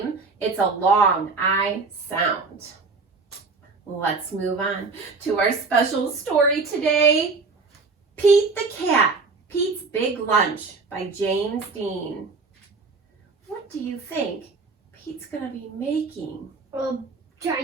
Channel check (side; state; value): left; quieter; 4.3 dB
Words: it's a long I sound. Let's move on to our special story today. Pete the Cat, Pete's Big Lunch by James Dean. What do you think Pete's going to be making? A